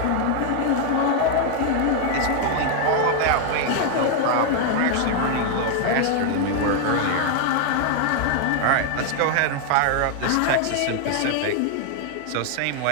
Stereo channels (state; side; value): different; both; correlation 0.00